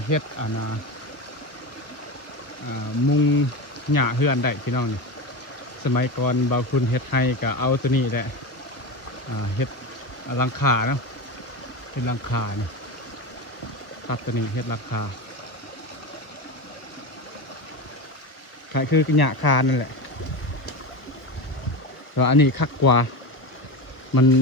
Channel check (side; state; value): right; late; 1.3 ms